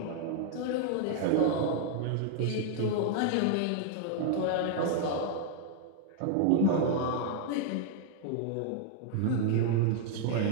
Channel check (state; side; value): different; both; correlation 0.00